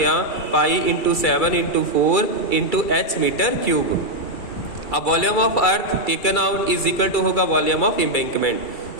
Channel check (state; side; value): late; right; 2.3 ms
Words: pi into 7 into 4 into h metre cube. अब volume of earth taken out is equal to होगा volume of embankment.